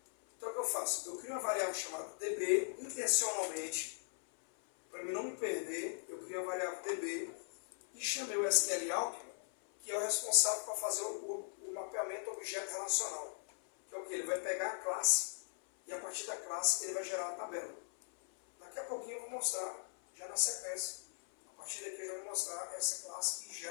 Então o que eu faço? Eu crio uma variável chamada DB intencionalmente, para mim não me perder, eu crio uma variável DB e chamei o SQL Alchemy, que é o responsável por fazer o mapeamento objeto relacional. Que é o que? Ele vai pegar a classe e a partir da classe ele vai gerar a tabela. Daqui a pouquinho eu vou mostrar, já na sequência, a partir daqui eu já vou mostrar essa classe que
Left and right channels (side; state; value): right; silent; 52 dB below the other